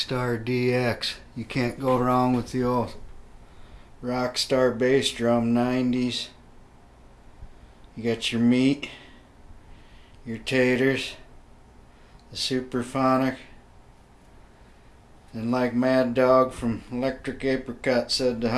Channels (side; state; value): both; identical; correlation 1.00